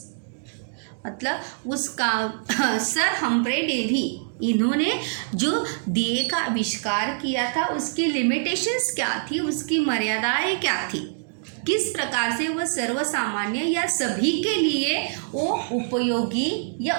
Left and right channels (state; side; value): silent; left; digital silence